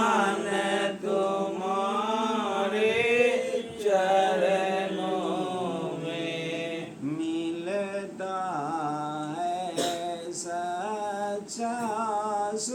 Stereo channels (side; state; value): both; identical; correlation 1.00